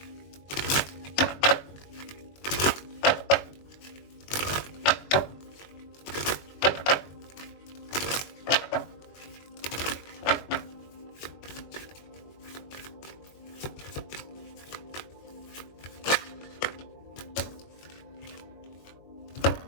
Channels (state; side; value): late; right; 21 ms